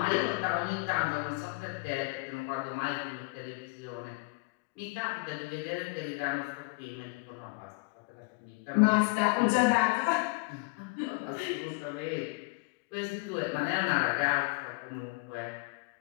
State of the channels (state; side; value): quieter; right; 28.6 dB